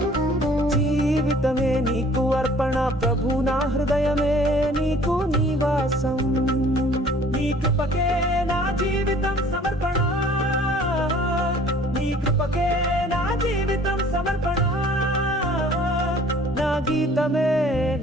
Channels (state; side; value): normal; both; correlation 0.53